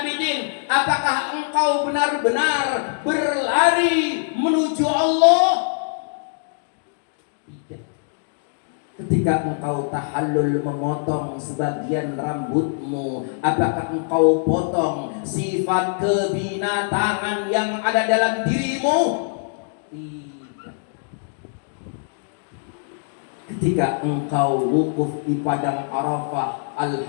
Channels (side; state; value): right; silent; digital silence